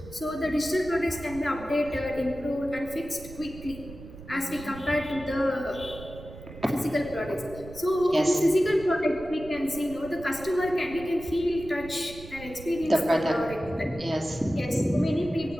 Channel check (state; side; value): noise; right; rumble, 15 dB below the sound